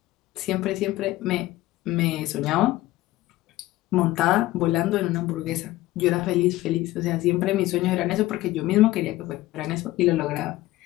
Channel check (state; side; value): quieter; right; 17.1 dB